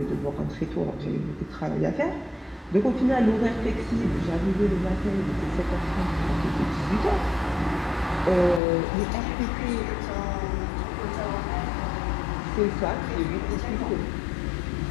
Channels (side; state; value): right; drops out; at 8.6 s